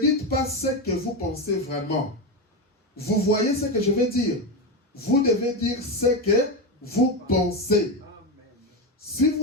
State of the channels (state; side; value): normal; both; correlation 0.13